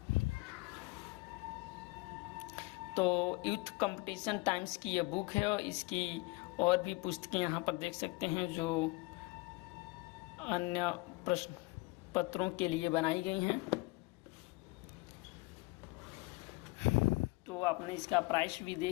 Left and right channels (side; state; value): right; quieter; 23.9 dB